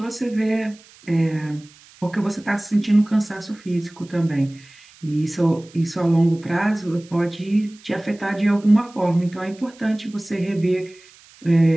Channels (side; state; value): right; noise; hiss, 25 dB below the sound